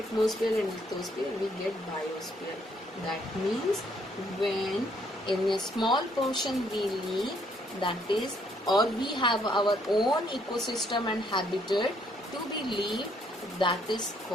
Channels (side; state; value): both; normal; correlation 0.69